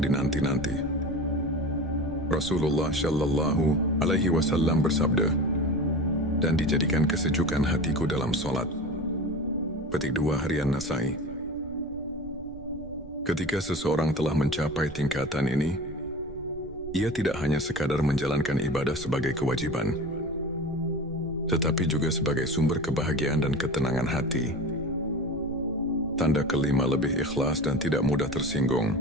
dinanti-nanti. Rasulullah Shallallahu Alaihi Wasallam bersabda, "Dan dijadikan kesejukan hatiku dalam solat." Petik 2 harian Nasai. Ketika seseorang telah mencapai tingkatan ini, ia tidak hanya sekadar menjalankan ibadah sebagai kewajiban, tetapi juga sebagai sumber kebahagiaan dan ketenangan hati. Tanda kelima, lebih ikhlas dan tidak mudah tersinggung.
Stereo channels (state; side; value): noise; right; rumble, 16 dB below the sound